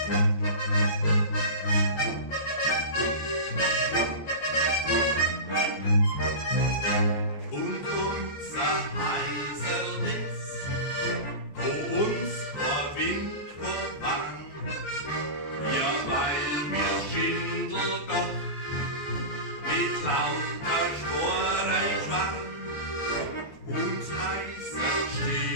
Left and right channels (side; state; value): right; late; 14 ms